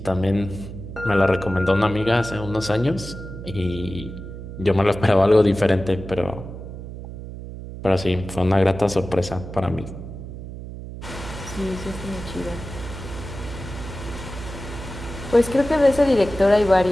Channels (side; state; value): right; noise; hum, 11 dB below the sound